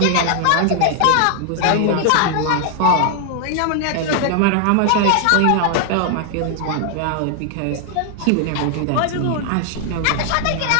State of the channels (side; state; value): both; different; correlation 0.00